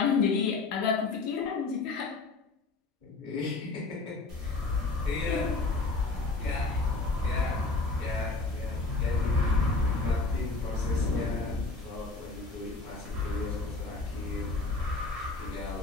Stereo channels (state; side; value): quieter; right; 3.6 dB